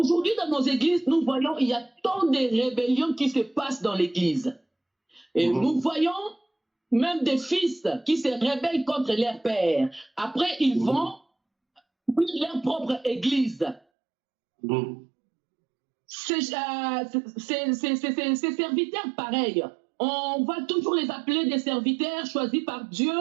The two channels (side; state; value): left; drops out; at 13.8 s